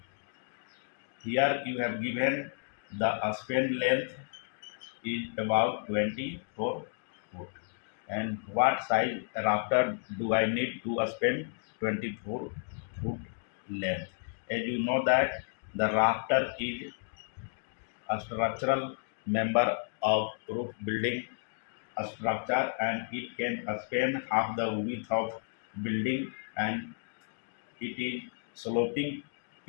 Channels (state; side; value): silent; right; digital silence